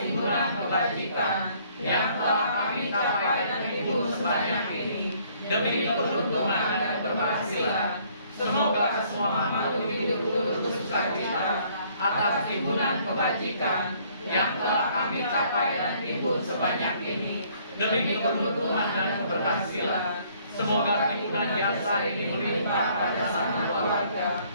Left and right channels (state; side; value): inverted; both; correlation -0.62